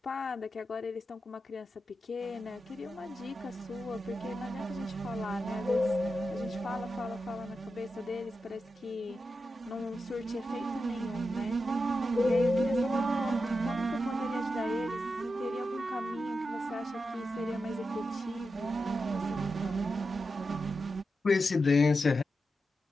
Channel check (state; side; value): normal; both; correlation 0.89